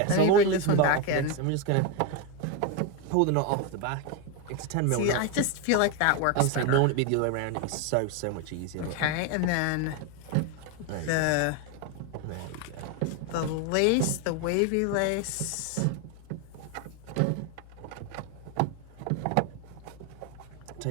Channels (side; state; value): both; different; correlation 0.02